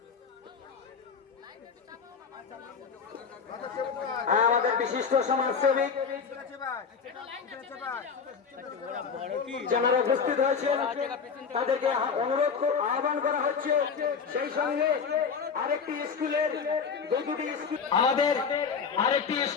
আমাদের বিশিষ্ট সমাজসেবী যারা উপস্থিত হয়েছেন তাদেরকে অনুরোধ আহ্বান করা হচ্ছে। সেই সঙ্গে আরেকটি স্কুলের আমাদের আরেকটি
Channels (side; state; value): right; quieter; 6.0 dB